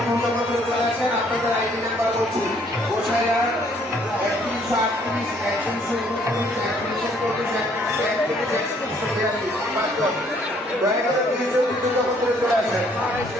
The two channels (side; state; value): both; normal; correlation 0.64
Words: পূর্ণ করে চলে আসেন। আপনাদের আইডি নাম্বার বলছি গোসাইয়া 3138 দয়া করে দুই ছবি পূর্ণ করে চলে আসেন।